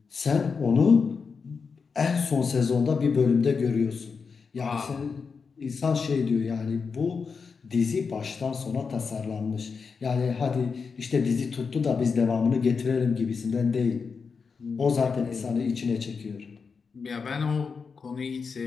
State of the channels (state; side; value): quieter; right; 5.3 dB